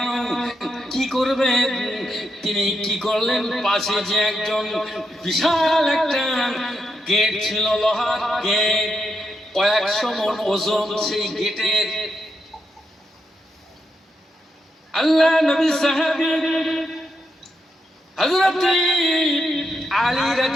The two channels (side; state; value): both; normal; correlation 0.82